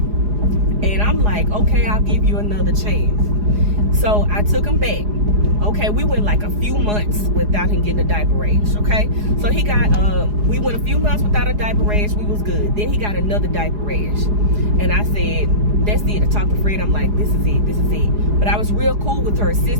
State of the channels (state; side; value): late; left; 4.8 ms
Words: And I'm like, okay, I'll give you another chance. So I took him back. Okay, we went like a few months without him getting a diaper rash, okay? So he got, we went a few months without a diaper rash. We was good. Then he got another diaper rash. And I said, that's it. I talked to Fred. I'm like, this is it. But I was real cool with her